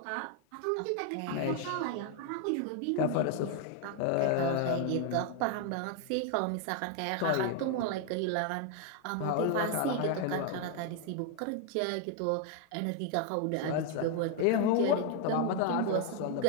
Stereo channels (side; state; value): both; different; correlation 0.00